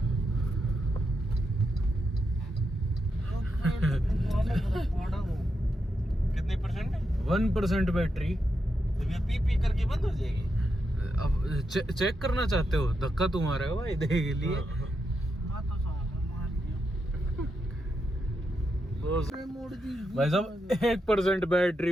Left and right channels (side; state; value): both; normal; correlation 0.84